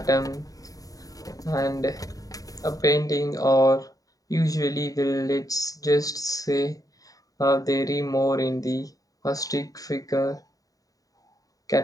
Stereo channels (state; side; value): late; right; 0.17 ms